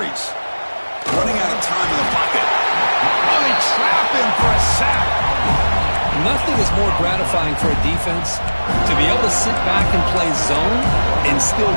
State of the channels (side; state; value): both; inverted; correlation -1.00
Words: Running out of time in the pocket. Oh, they trap him for a sack. Nothing is more gratifying for a defense to be able to sit back and play zone and still